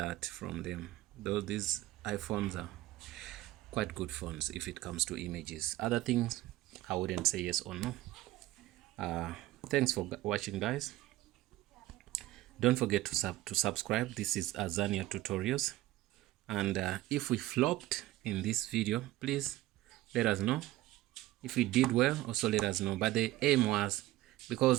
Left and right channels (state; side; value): quieter; left; 16.7 dB